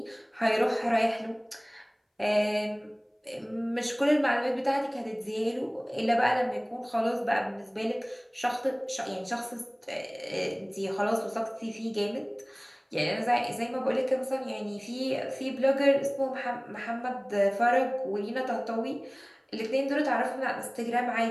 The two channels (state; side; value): identical; both; correlation 1.00